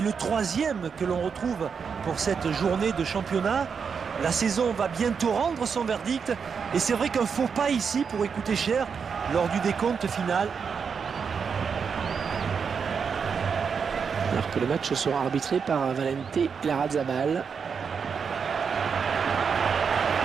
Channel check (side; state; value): left; quieter; 6.2 dB